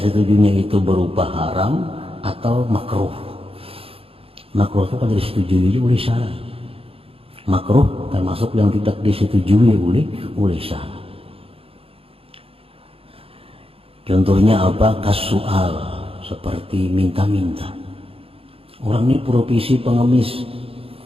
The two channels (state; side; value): late; left; 0.27 ms